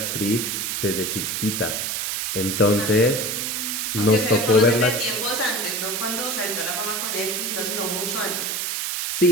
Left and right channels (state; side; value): noise; right; hiss, 1 dB below the sound